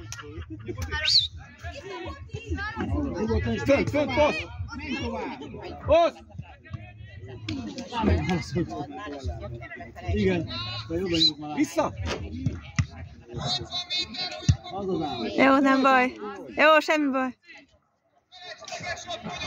Fönt, passz! Passz! Igen, vissza! Jó, nem baj. Jó, semmi baj.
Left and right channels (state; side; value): identical; both; correlation 1.00